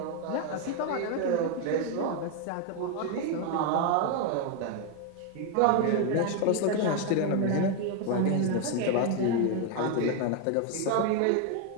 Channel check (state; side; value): different; both; correlation 0.01